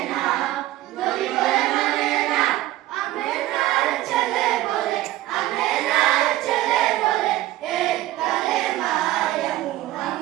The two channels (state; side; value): quieter; left; 15.7 dB